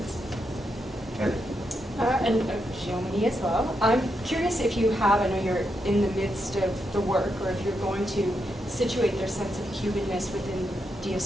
Heather? And Xiaomini as well. I'm curious if you have, I know you're in the midst of the work, or if you're going to situate their sense of Cubanness within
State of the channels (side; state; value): both; normal; correlation 0.83